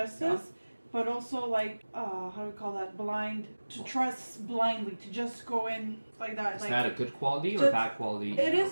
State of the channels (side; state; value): both; inverted; correlation -1.00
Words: but also like how do we call that? Blind to trust blindly to just go in like that. Is like, that a good quality or just- bad quality? It in your